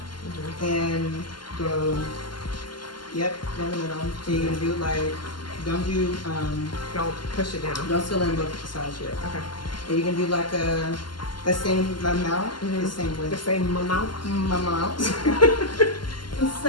and go. Yep, down the middle. So you're gonna do like, don't Don't push it down. don't fill in both sides yet. Okay. And you can do like the same amount, the same The width. same amount. Amount. The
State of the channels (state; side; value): late; right; 0.71 ms